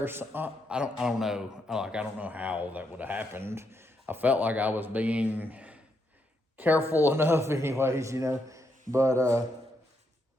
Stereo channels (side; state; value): both; normal; correlation 0.79